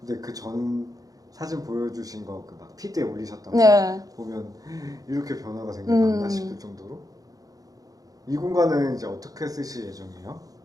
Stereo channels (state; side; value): late; left; 0.17 ms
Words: 근데 그 전 사진 보여주신 거 그 막 피드에 올리셨던 네. 거 보면 이렇게 변화가 생겼나 싶을 정도로. 이 공간은 이제 어떻게 쓰실 예정이에요?